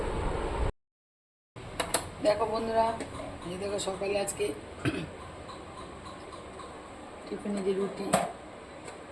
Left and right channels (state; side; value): identical; both; correlation 1.00